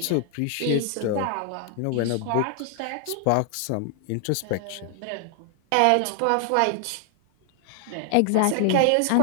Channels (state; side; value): different; both; correlation 0.00